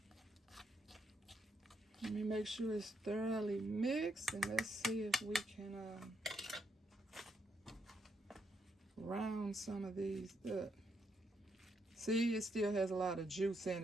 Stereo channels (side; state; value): both; normal; correlation 0.78